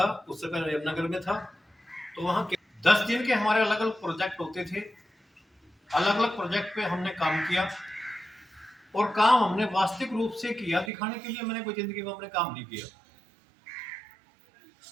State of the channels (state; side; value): drops out; left; at 10.9 s